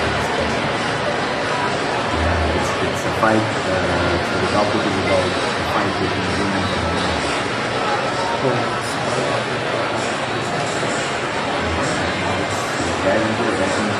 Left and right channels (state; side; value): identical; both; correlation 1.00